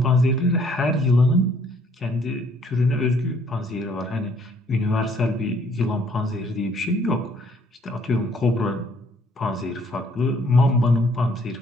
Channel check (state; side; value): normal; both; correlation 0.63